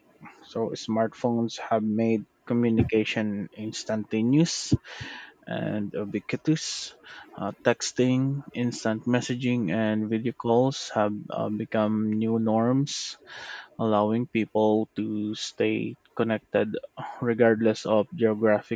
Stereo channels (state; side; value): identical; both; correlation 1.00